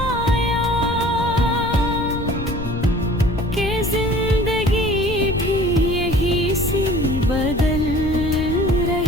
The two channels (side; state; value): left; noise; rumble, 7 dB below the sound